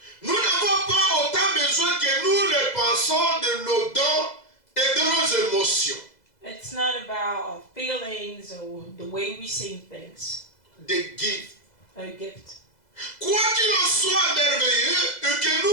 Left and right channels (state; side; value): late; right; 2.0 ms